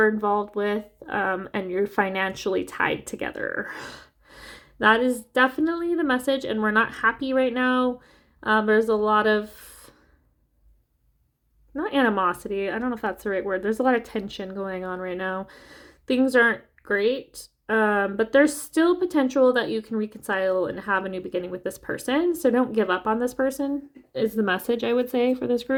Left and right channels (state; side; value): identical; both; correlation 1.00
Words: involved with, and you're financially tied together. That is definitely the message, and we're not happy right now. There's a lot of, not animosity, I don't know if that's the right word. There's a lot of tension going on right now. Things aren't great, but there's still potential that you can reconcile and have a new beginning with this person. So don't give up on this person is the message I would say for this